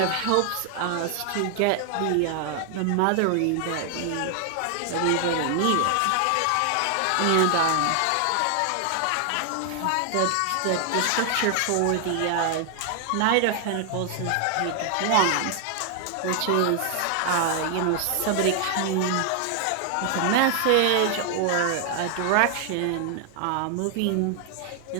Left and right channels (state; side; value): different; both; correlation 0.00